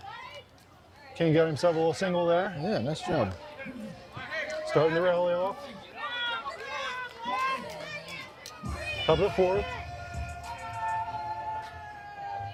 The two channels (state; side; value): identical; both; correlation 1.00